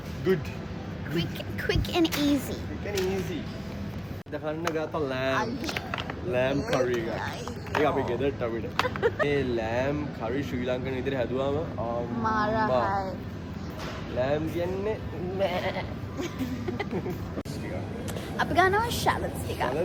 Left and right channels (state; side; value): identical; both; correlation 1.00